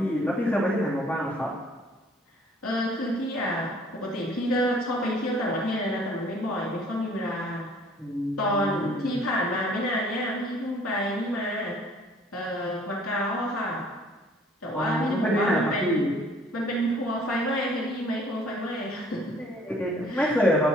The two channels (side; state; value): both; normal; correlation 0.56